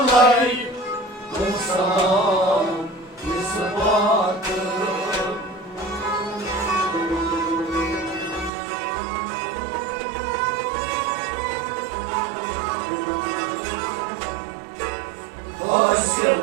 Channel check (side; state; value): left; drops out; at 8.5 s